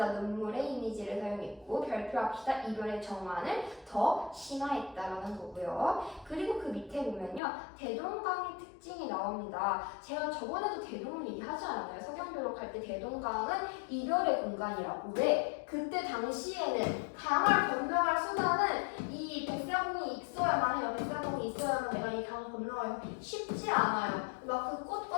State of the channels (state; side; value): drops out; right; at 7.4 s